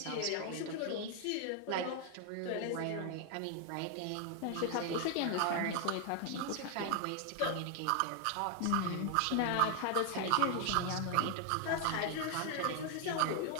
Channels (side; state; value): both; different; correlation 0.00